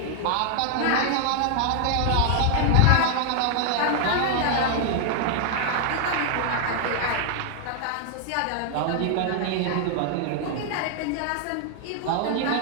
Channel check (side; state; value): both; different; correlation 0.00